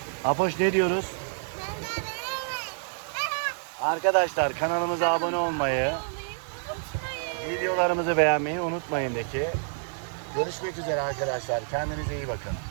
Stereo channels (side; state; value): left; silent; 59 dB below the other